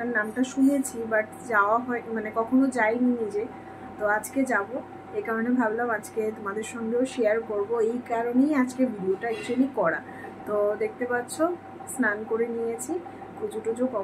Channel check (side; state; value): both; identical; correlation 1.00